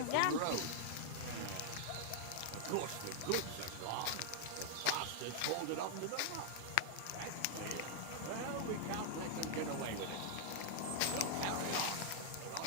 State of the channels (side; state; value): both; different; correlation -0.01